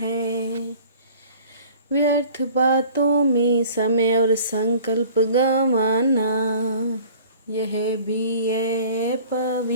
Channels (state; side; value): inverted; both; correlation -0.48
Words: व्यर्थ बातों में समय और संकल्प गंवाना, यह भी है